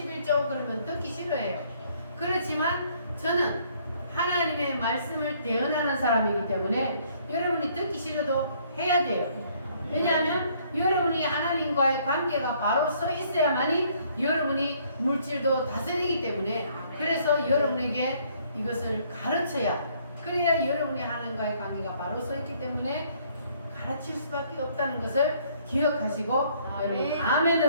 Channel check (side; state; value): both; inverted; correlation -0.64